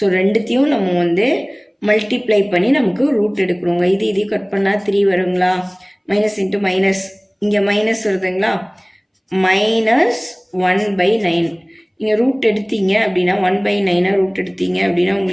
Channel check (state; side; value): identical; both; correlation 1.00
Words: ரெண்டுத்தையும் நம்ம வந்து மல்டிப்ளை பண்ணி நமக்கு ரூட் எடுக்கணுங்க. இது கட் பண்ணால் 3 வருங்களா, மைனஸ் இன்ட்டு மைனஸ், இங்கே மைனஸ் வருதுங்களா, -1/9. நீங்கள் ரூட் எடுத்தீங்க அப்படின்னா 1/9 ரூட் எடுத்தீங்க அப்படின்னா